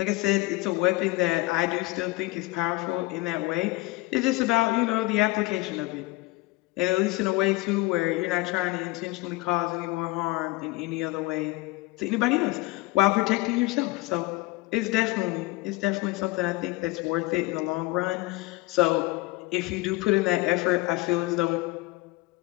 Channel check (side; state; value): right; quieter; 21.4 dB